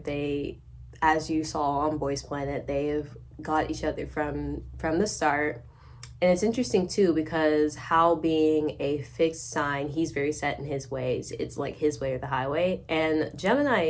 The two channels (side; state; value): both; identical; correlation 1.00